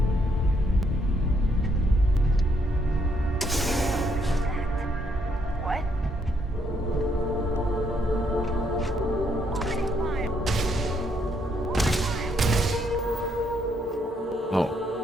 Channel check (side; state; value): both; normal; correlation 0.73